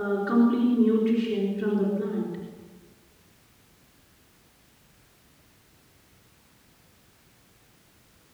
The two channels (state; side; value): identical; both; correlation 1.00